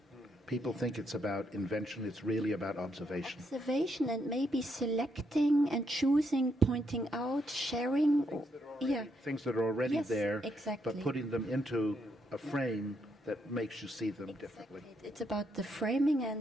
People think it's about invention. It's really about observation. Observation, and maybe selecting and choosing, pointing out, sharing. Things that are already Yes, there, exactly. but putting them into a frame that makes you see them differently. It's about the framing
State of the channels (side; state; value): both; normal; correlation 0.77